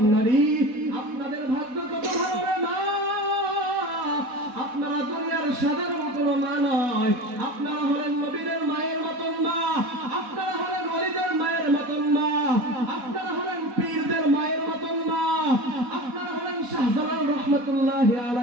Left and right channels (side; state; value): left; late; 4.1 ms